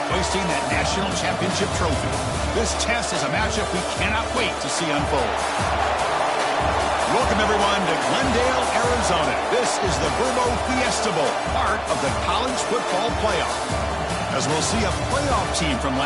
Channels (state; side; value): identical; both; correlation 1.00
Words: hoisting that national championship trophy. This test is a matchup we cannot wait to see unfold. Welcome, everyone, to Glendale, Arizona. This is the Vrbo Fiesta Bowl, part of the college football playoff. As we'll see a playoff team from